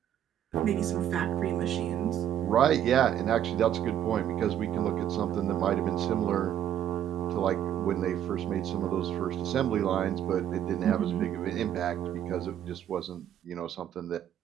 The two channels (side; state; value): left; quieter; 10.5 dB